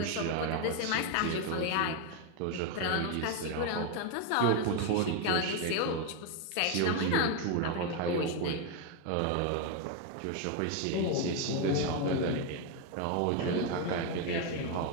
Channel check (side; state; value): both; different; correlation 0.01